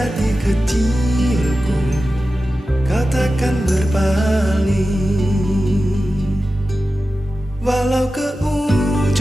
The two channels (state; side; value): normal; both; correlation 0.94